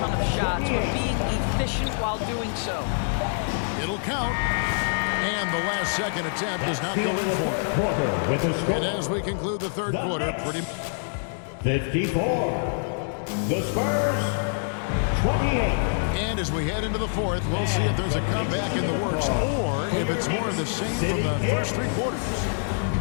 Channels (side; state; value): right; silent; digital silence